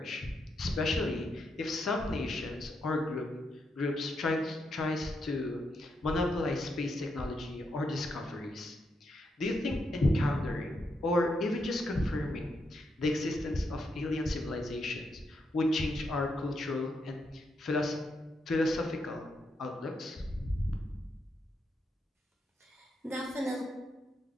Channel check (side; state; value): both; normal; correlation 0.81